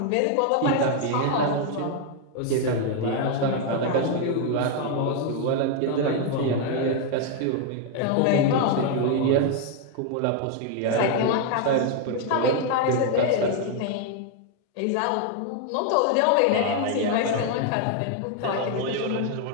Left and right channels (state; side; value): different; both; correlation 0.00